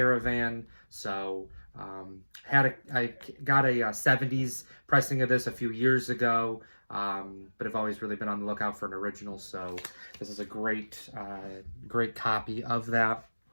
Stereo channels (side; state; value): both; inverted; correlation -1.00